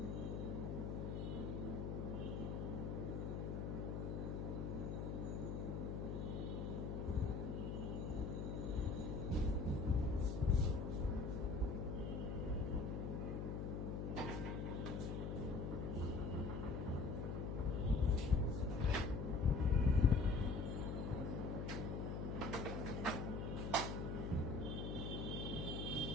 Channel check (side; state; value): left; noise; hum, 2 dB below the sound